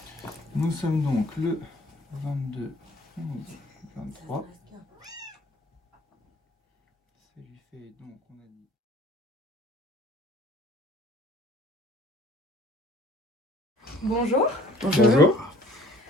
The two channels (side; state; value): both; normal; correlation 0.54